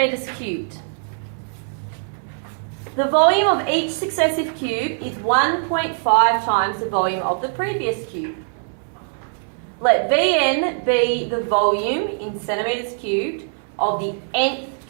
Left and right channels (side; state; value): left; silent; 64 dB below the other